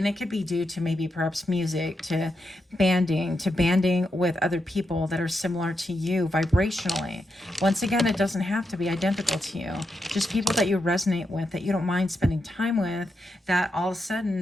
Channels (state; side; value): normal; both; correlation 0.85